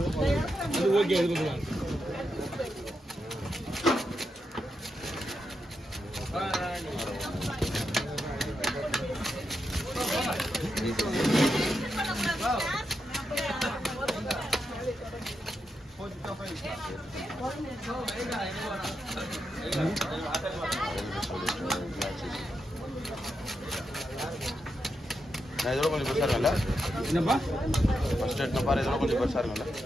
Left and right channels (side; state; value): both; normal; correlation 0.85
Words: ஓகே. அது பார்க்கலாம். நான் இதோட கொஞ்சம் பெருசாக இருக்கும்ல? என்னப்பா ஃபர்ஸ்ட் எடுத்து பாரு, இதோட கொஞ்சம் பெருசாக இருக்கும்ல?